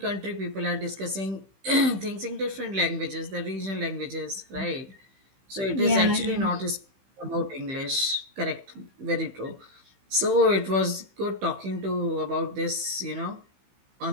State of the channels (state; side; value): late; left; 15 ms